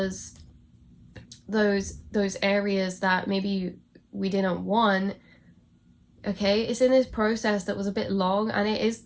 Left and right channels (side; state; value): both; identical; correlation 1.00